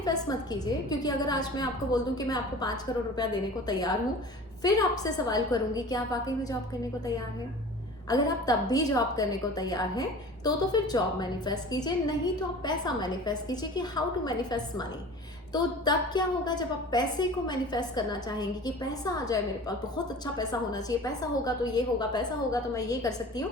मत कीजिए, क्योंकि अगर आज मैं आपको बोल दूं कि मैं आपको 5 करोड़ रुपया देने को तैयार हूँ, फिर आपसे सवाल करूंगी कि आप वाकई में जॉब करने को तैयार हैं। अगर आप तब भी जॉब करने को तैयार हैं तो फिर जॉब मैनिफेस्ट कीजिए, नहीं तो आप पैसा मैनिफेस्ट कीजिए कि हाउ टू मैनिफेस्ट मनी। तो तब क्या होगा, जब आप पैसे को मैनिफेस्ट करना चाहेंगे कि पैसा आ जाए मेरे पास, बहुत अच्छा पैसा होना चाहिए, पैसा होगा तो ये होगा, पैसा होगा तो मैं ये कर सकती हूँ,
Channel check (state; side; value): normal; both; correlation 0.40